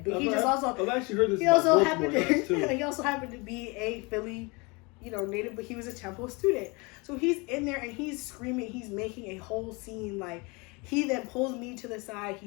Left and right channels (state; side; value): quieter; right; 27.8 dB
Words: But he just also, I've actually heard this. He also happened to be a Philly, you know, native, but he was a Temple student. So he's in there and he's screaming. He's making a whole scene. Like, he then pulls me to the side.